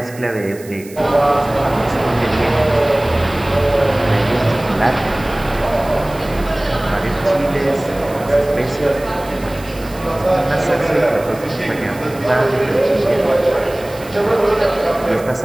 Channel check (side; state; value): right; noise; hiss, 20 dB below the sound